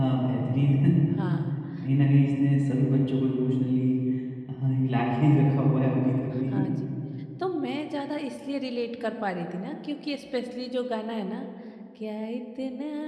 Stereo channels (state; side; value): identical; both; correlation 1.00